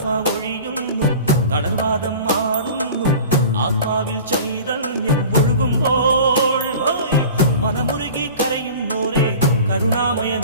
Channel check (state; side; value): inverted; both; correlation -0.40